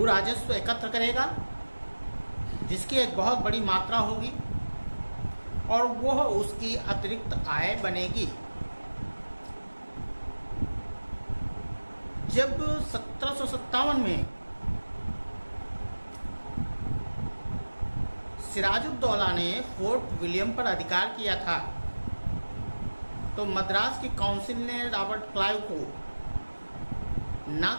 राजस्व एकत्र करेगा जिसकी एक बहुत बड़ी मात्रा होगी और वह उसकी अतिरिक्त आय बनेगी। जब 1757 में सिराजुद्दौला ने फोर्ट विलियम पर अधिकार किया था तो मद्रास की काउंसिल ने रॉबर्ट क्लाइव को न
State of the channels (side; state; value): both; inverted; correlation -1.00